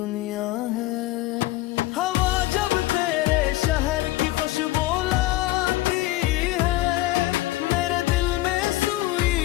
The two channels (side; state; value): right; quieter; 17.3 dB